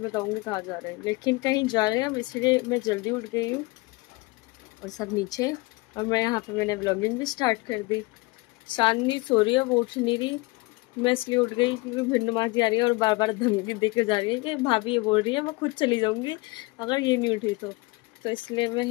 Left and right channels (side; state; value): right; quieter; 24.4 dB